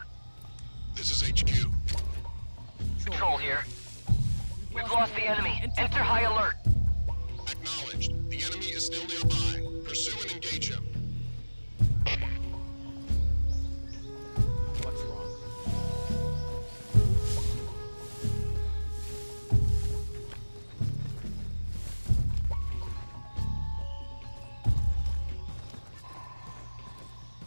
This is HQ. Patrol here. We've lost the enemy. Enter high alert. Acknowledged. The enemy is still nearby. Pursue and engage him.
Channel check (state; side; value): inverted; both; correlation -1.00